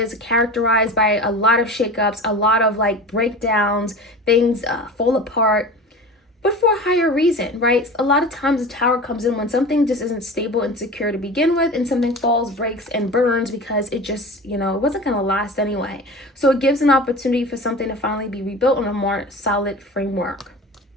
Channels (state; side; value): normal; both; correlation 0.34